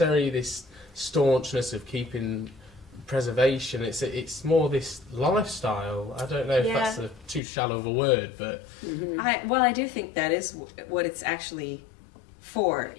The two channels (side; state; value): right; drops out; at 7.4 s